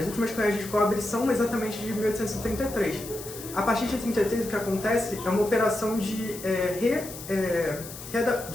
últimas cunhagens de cobre são exatamente de 1833. A partir de 33, o que acontece é uma operação de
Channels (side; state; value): left; noise; hiss, 13 dB below the sound